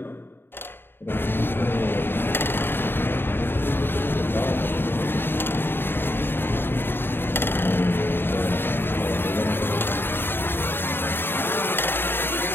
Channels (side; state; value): right; late; 0.10 ms